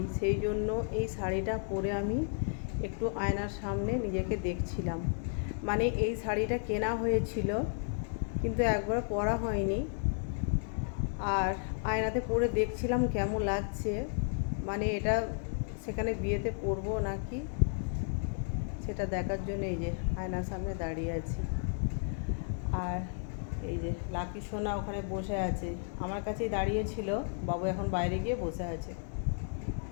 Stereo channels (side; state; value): right; silent; 56 dB below the other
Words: সেই জন্য এই শাড়িটা পরে আমি একটু আয়নার সামনে নিজেকে দেখছিলাম। মানে এই শাড়িটা কেনা হয়েছিল কিন্তু একবার পরা হয়নি। আর আয়নাতে পরে দেখছিলাম কেমন লাগছে, মানে এটা সেখানে বিয়েতে পরবো নাকি সেটা দেখার জন্য এই যে আয়নার সামনে দাঁড়িয়ে আছি। আর এই যে লাকি সোনা ওখানে বসে আছে, আমার কাছেই দাঁড়িয়ে ছিল। বাবু এখন বাইরে গিয়ে বসে আছে।